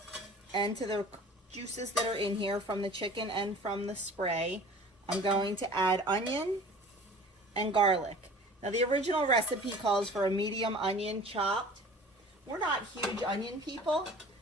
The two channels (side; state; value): both; normal; correlation 0.44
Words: and to the juices that are in here from the chicken and from the spray, I'm going to add onion and garlic. Now the original recipe calls for a medium onion chopped. We're not huge onion people,